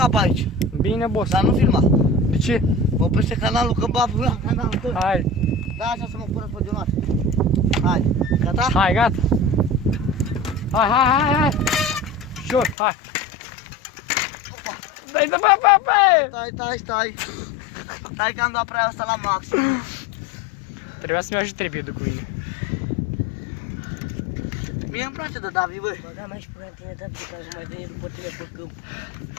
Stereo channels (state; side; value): drops out; right; at 12.8 s